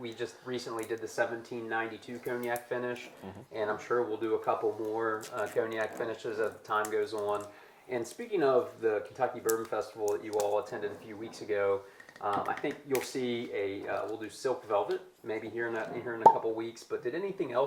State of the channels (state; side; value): identical; both; correlation 1.00